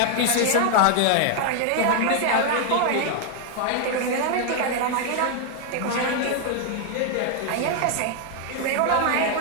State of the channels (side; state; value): both; different; correlation 0.00